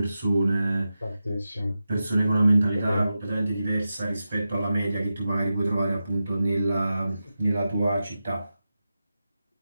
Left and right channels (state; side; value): inverted; both; correlation -0.92